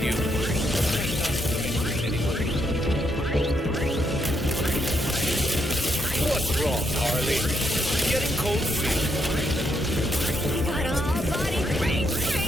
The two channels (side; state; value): both; normal; correlation 0.77